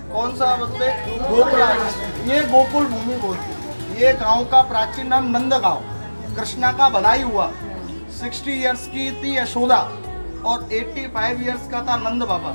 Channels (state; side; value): inverted; both; correlation -1.00